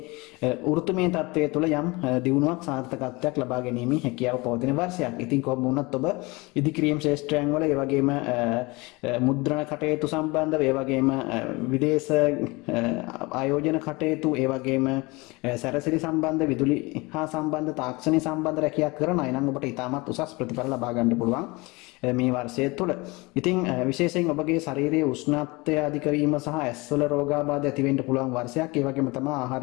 වෘත්තමය තත්ත්වයේ තුල යම් දියුණුවක් සාර්ථකත්වයක් ලබා ගැනීමේ හැකියාව පවතින වර්ෂයක්. ඉතින් කොහොම වුණත් ඔබ ඉදිකිරීම් ශාස්ත්‍රයන් වල ඒ වගේම මුද්‍රණ කටයුතු සම්බන්ධව ඒ වගේම විදේශ ආයෝජන කටයුතු ඒ වගේම සැරසිලි සම්බන්ධ විදුලි හා සම්බන්ධ තාක්ෂණික සම්බන්ධ රැකියාවක් කරන අය නම් ඔබට ඉතාමත් උසස් ප්‍රතිඵල ලබා ගන්න පුළුවන් මේ වර්ෂය තුළ. ඉතින් විශේෂයෙන් ඔබගේ ශරීරයේ උෂ්ණත්වය අධික වීම සහ ඇස්වල රෝගාබාධ ඇති වෙන්න පුළුවන් වර්ෂයක්. ඒ වගේම තමයි ආහාර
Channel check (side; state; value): right; quieter; 24.7 dB